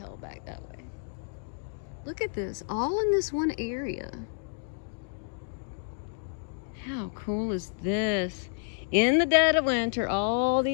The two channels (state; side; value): silent; right; digital silence